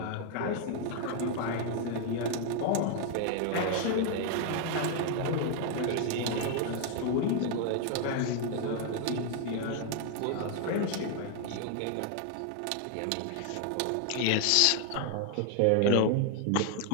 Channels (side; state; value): both; different; correlation 0.00